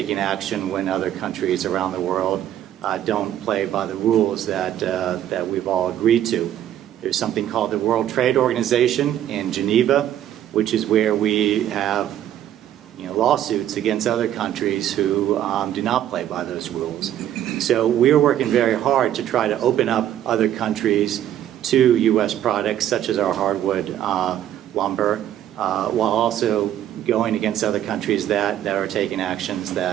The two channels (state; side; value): quieter; left; 11.3 dB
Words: action when other countries around the world don't play by the rules that we've all agreed to. There's something called the World Trade Organization in Geneva, which is where we have lawsuits against other countries who do not play by those rules. So we're working very hard to try to open up other countries to U.S. products such as our hardwood lumber, while also going against other countries that are taking actions